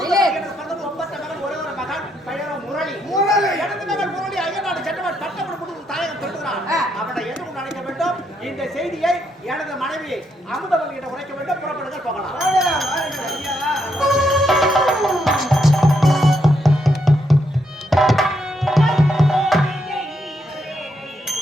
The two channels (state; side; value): normal; both; correlation 0.78